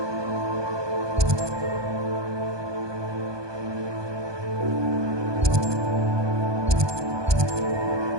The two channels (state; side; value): late; left; 1.2 ms